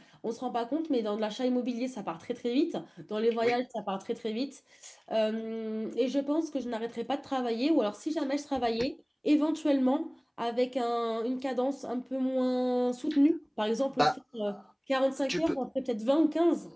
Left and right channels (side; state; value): both; identical; correlation 1.00